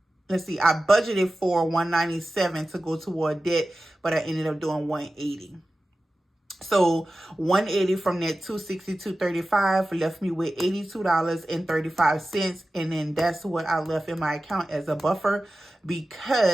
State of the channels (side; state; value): both; normal; correlation 0.95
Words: let's see, I budgeted for $197 to go toward debt, but I ended up doing $180. So $180 from that $262.35 left me with $82.35, and then that's what I left in my account as a buffer,